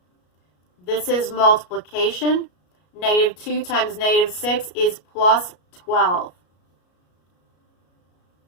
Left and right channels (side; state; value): right; late; 33 ms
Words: This is multiplication. -2 times -6 is +12.